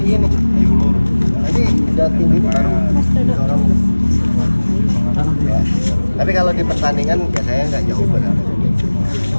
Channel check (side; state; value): both; inverted; correlation -1.00